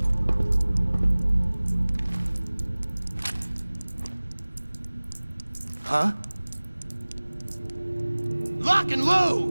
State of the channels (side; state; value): both; inverted; correlation -1.00